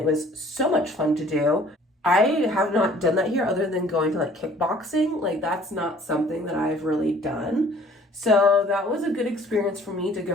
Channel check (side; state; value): both; normal; correlation 0.54